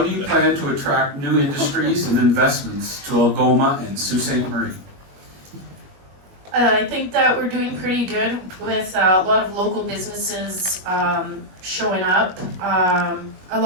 do you plan to attract new industries and investments to Algoma and Sault Ste. Marie? I think that we're doing pretty good with a lot of local businesses showing up. I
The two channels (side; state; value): left; late; 21 ms